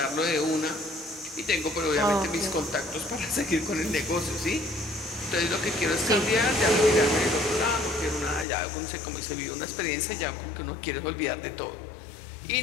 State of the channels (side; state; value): right; drops out; at 8.5 s